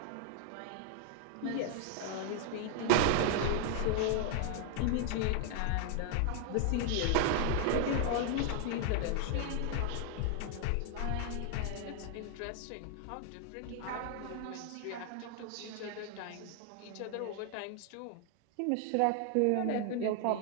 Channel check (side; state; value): both; different; correlation 0.00